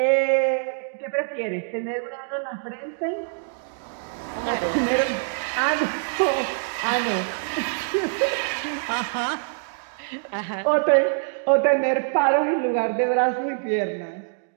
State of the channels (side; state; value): left; silent; digital silence